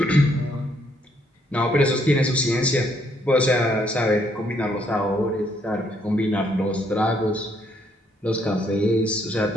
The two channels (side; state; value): both; normal; correlation 0.70